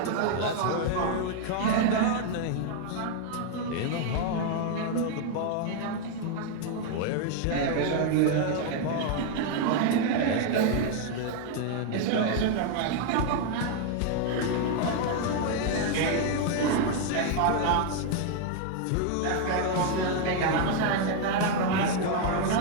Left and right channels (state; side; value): different; both; correlation 0.00